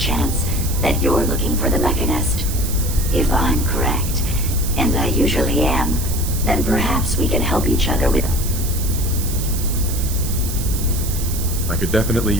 that you're looking for the Mechanist. If I'm correct, and I usually am, then perhaps we can help each other with... I could definitely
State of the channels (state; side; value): noise; right; hiss, 8 dB below the sound